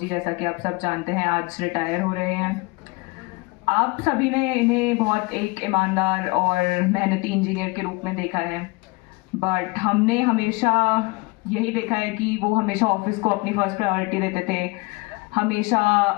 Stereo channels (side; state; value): right; quieter; 25.8 dB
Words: जैसा कि आप सब जानते हैं, आज रिटायर हो रहे हैं। आप सभी ने इन्हें बहुत एक ईमानदार और मेहनती इंजीनियर के रूप में देखा है, बट हमने हमेशा यही देखा है कि वो हमेशा ऑफिस को अपनी फर्स्ट प्रायोरिटी देते थे, हमेशा